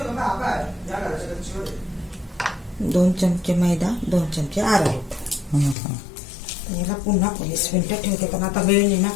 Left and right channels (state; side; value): drops out; right; at 5.8 s